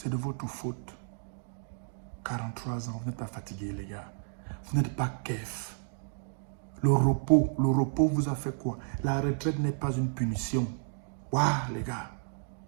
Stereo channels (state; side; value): silent; left; 57 dB below the other